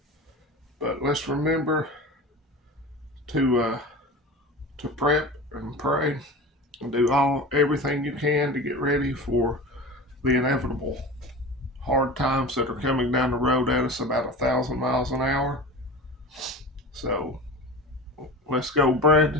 But let's remember to prep and pray and do everything you can to get ready for the inevitable hard times that are coming down the road at us about 1,000 miles an hour. So let's go,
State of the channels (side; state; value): both; normal; correlation 0.32